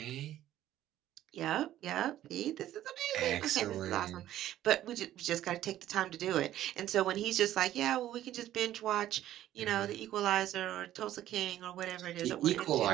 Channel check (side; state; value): left; quieter; 13.0 dB